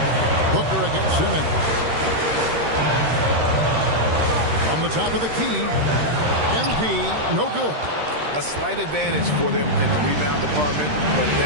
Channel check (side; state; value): left; late; 13 ms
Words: Booker against Simmons. From the top of the key. MP, no good. A slight advantage for them in the rebound department, but